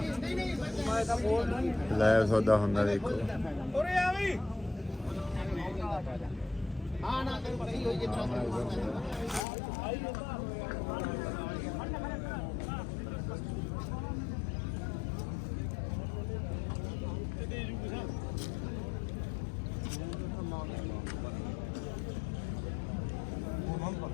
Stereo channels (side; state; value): right; drops out; at 9.5 s